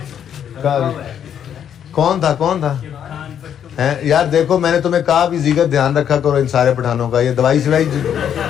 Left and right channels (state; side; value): quieter; right; 9.0 dB